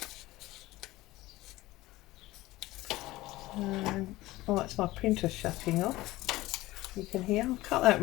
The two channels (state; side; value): quieter; right; 18.2 dB